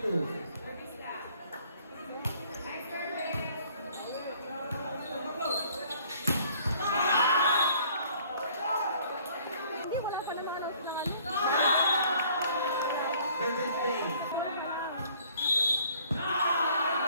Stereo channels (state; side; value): inverted; both; correlation -0.58